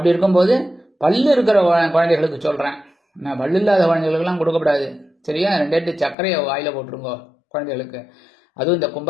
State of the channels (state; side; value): drops out; right; at 6.2 s